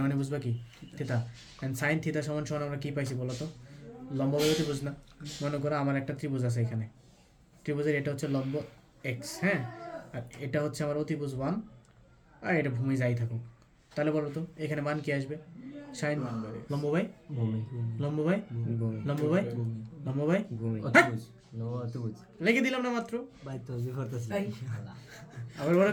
মানে বুঝবা কি থিটা অ্যান্ড সাইন থিটা সমান সমান আমরা কী পাইছি বলো তো লম্ব বাই ত্রিভুজ না মনে করো আমার একটা ত্রিভুজ আছে এখানে ত্রিভুজের এটা হচ্ছে লম্ব এক্স হ্যাঁ আর এটা হচ্ছে আমার অতিভুজ 1 আর এটা ভূমি যাই থাকুক তাহলে বলো তো এখানে মান কি আসবে সাইন লম্ব বাই ভূমি লম্ব বাই লম্ব বাই লম্ব বাই অতিভুজ লম্ব অতিভুজ লিখে দিলাম না মাত্র ভাই তো যে করতেছি আবার ওরা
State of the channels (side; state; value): both; identical; correlation 1.00